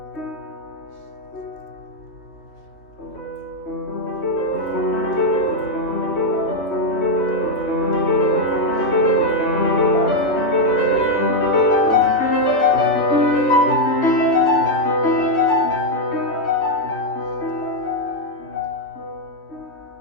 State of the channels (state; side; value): late; right; 3.1 ms